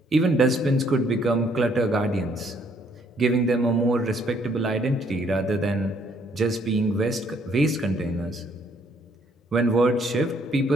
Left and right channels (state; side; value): normal; both; correlation 0.67